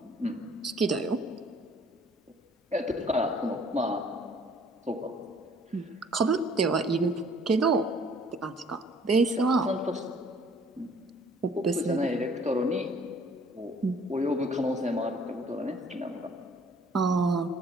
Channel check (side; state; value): both; normal; correlation 0.57